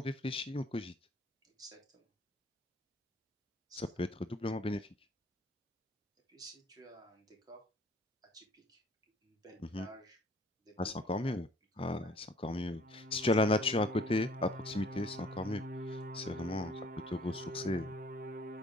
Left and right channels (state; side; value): normal; both; correlation 0.56